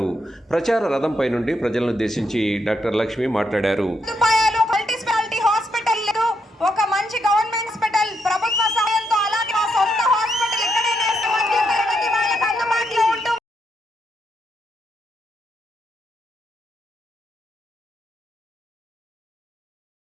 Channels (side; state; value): both; normal; correlation 0.79